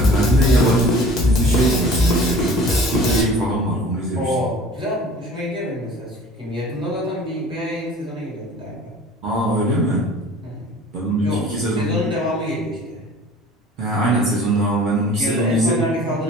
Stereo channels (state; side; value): normal; both; correlation 0.45